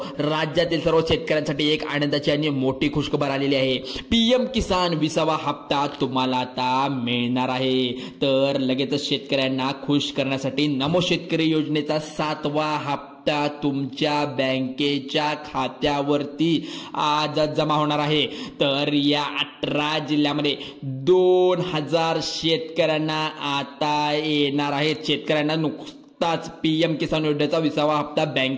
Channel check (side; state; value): both; identical; correlation 1.00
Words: राज्यातील सर्व शेतकऱ्यांसाठी एक आनंदाची आणि मोठी खुशखबर आलेली आहे. पीएम किसान 20वा हप्ता तुम्हाला आता मिळणार आहे. तर लगेचच शेतकऱ्यांना खुश करण्यासाठी नमो शेतकरी योजनेचा 7वा हप्ता तुमच्या बँकेच्या खात्यावरती आज जमा होणार आहे. तर या 18 जिल्ह्यामध्ये 2000 शेतकऱ्यांना आता येणार आहेत. शेतकऱ्यांना नुकताच पीएम किसान योजनेचा 20वा हप्ता